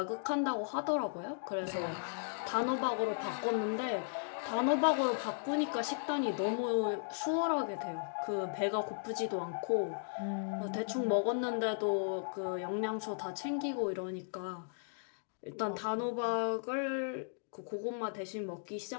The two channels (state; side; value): silent; right; digital silence